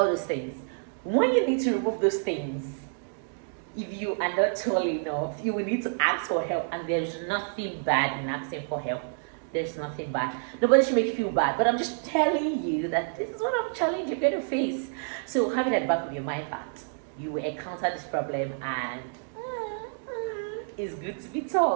those things. When you need to remove those things, if you are not tall enough, you will need to ask for help, and there's nothing bad in asking for help. There's nothing bad. Nobody should make you feel bad, but I'm just telling you that this is one of the challenges you're going to face. So have it at the back of your mind that you will encounter this problem, and it's good to be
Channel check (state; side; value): silent; left; digital silence